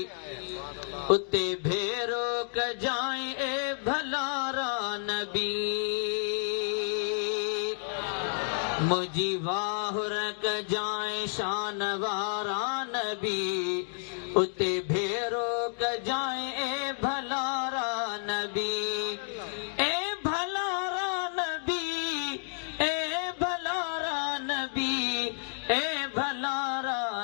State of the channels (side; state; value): right; silent; digital silence